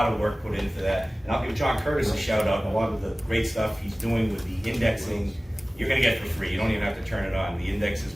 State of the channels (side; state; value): both; normal; correlation 0.98